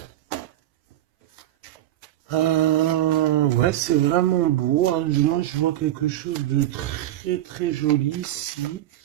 Ouais, c'est vraiment beau. Hein. Moi, je vois quelque chose de très très joli ici.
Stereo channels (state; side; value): quieter; left; 13.6 dB